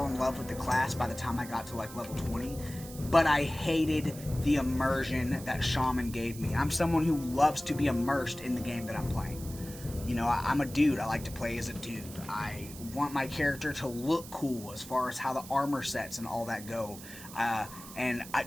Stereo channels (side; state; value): right; noise; hiss, 15 dB below the sound